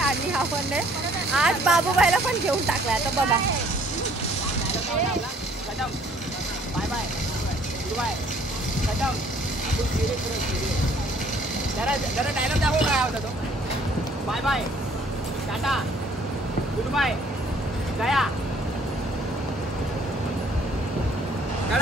आपण आज बाबूबाईला पण घेऊन टाकलाय. आता बघा जरा डायलॉग दाखव काय होता तो. Bye bye, tata, goodbye, गया.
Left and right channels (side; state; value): both; normal; correlation 0.59